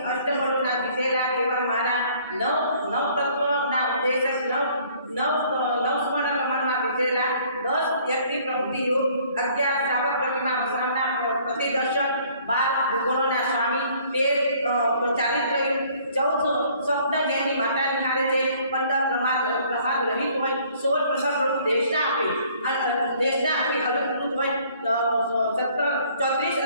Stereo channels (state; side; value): inverted; both; correlation -0.58